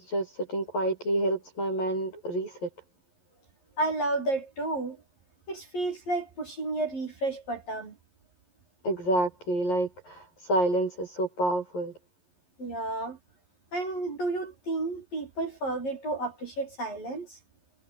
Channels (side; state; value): right; late; 11 ms